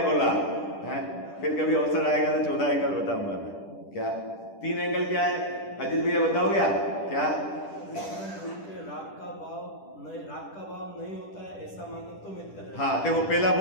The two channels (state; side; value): late; right; 10 ms